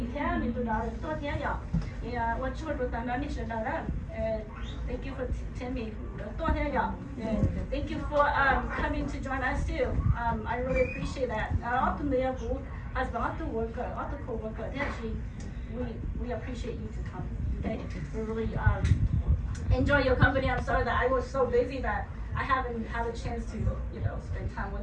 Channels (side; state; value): both; identical; correlation 1.00